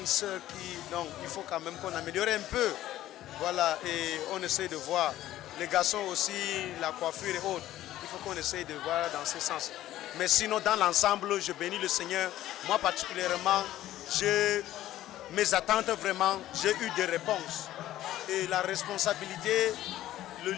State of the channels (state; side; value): quieter; right; 13.9 dB